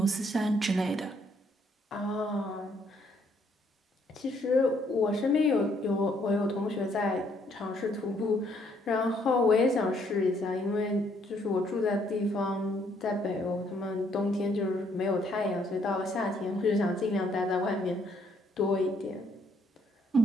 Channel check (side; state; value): both; normal; correlation 0.69